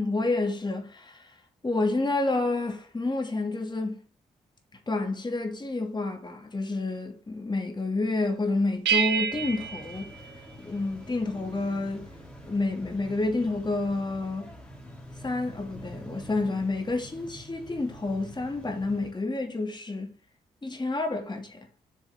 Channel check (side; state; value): both; normal; correlation 0.75